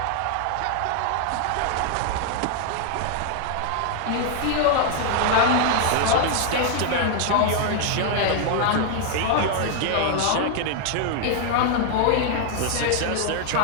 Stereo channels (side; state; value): both; different; correlation 0.00